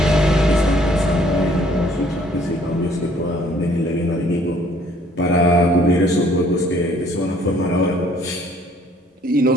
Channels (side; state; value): both; normal; correlation 0.60